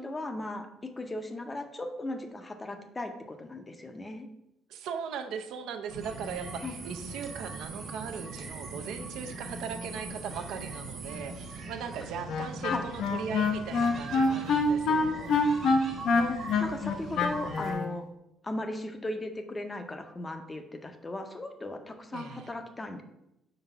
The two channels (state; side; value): normal; both; correlation 0.70